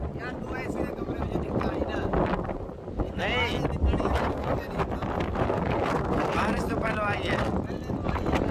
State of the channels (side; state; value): both; identical; correlation 1.00